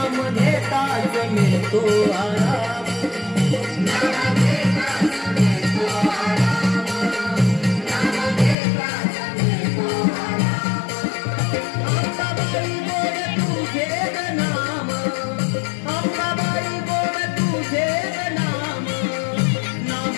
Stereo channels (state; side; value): drops out; right; at 8.6 s